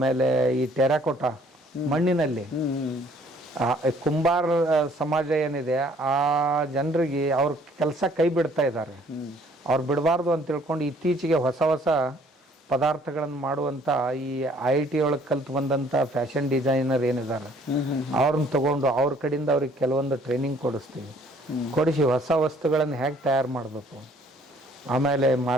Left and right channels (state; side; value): normal; both; correlation 0.59